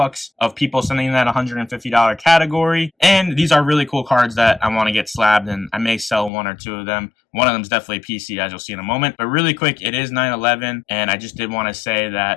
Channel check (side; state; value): right; drops out; at 6.3 s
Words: of people sending in that $150 category. And these are really cool cards that I want to get slabbed, and I may sell one or two of them. One of them is definitely a PC, as you'll see in a moment. But really quick, it is 9/11, and I just did want to say